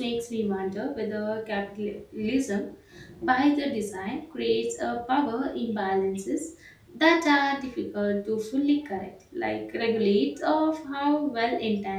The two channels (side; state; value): both; identical; correlation 1.00